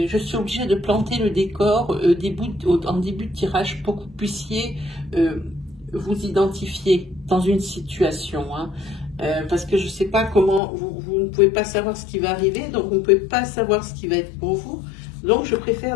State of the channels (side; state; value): right; drops out; at 10.6 s